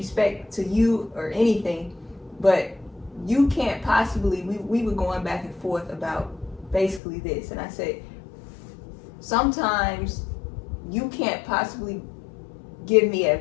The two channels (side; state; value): right; drops out; at 7.0 s